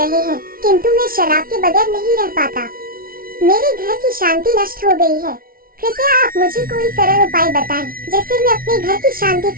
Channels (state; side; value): late; left; 0.43 ms